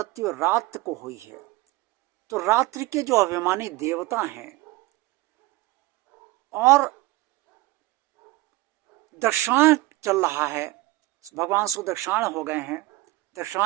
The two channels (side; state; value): left; quieter; 19.6 dB